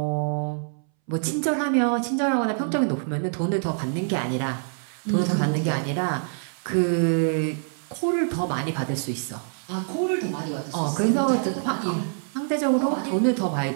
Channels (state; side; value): silent; left; 61 dB below the other